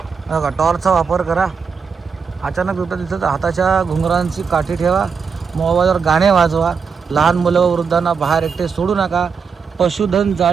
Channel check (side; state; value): left; quieter; 5.8 dB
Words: बघा. टॉर्चचा वापर करा. अचानक बिबटा दिसला तर हाताच्या घुंगरांची काठी ठेवा. मोबाईलवर गाणे वाजवा. लहान मुलं व वृद्धांना बाहेर एकटे सोडू नका. पशुधन